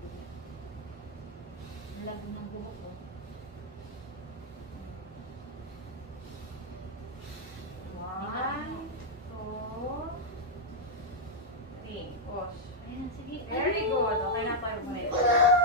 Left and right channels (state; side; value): normal; both; correlation -0.02